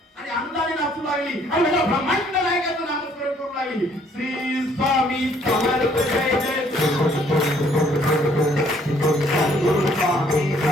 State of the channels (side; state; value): both; normal; correlation 0.63